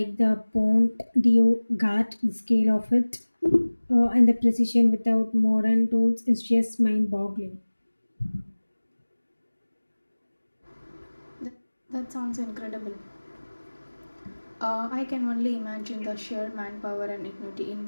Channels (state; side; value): inverted; both; correlation -1.00